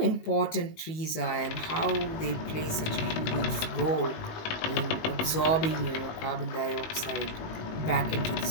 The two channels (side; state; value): right; late; 19 ms